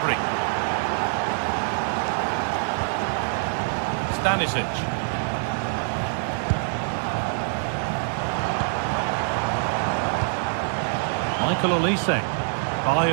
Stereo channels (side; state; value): left; silent; 61 dB below the other